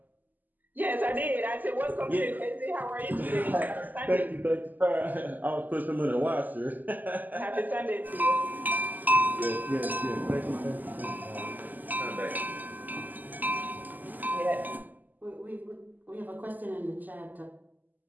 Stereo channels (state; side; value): late; left; 0.084 ms